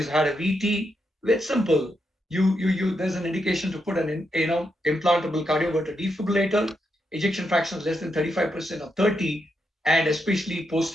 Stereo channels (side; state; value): both; normal; correlation 0.82